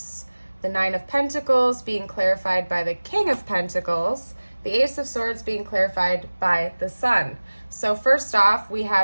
the Nine of Pentacles being clarified by the King of Pentacles, the Ace of Swords being clarified by the Sun. So first off, we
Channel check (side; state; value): both; inverted; correlation -1.00